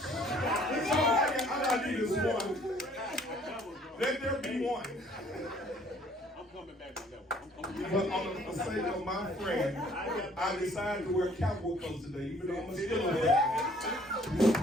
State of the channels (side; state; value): both; normal; correlation 0.59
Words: all I need is one. Let there be one. I'm coming back to that one. But on the sake of my friend, I decided to wear cowboy clothes today, even though I'm still a man.